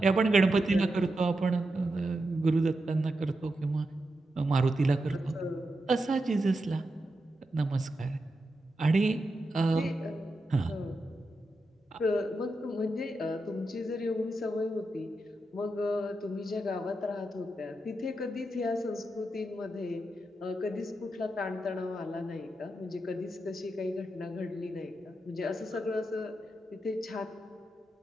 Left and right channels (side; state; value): both; normal; correlation 0.87